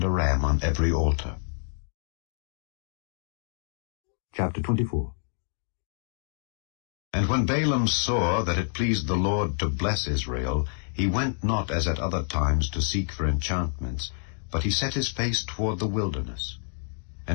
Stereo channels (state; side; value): silent; right; digital silence